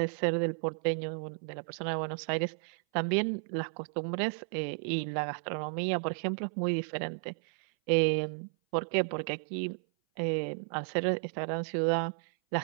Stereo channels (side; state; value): left; silent; 56 dB below the other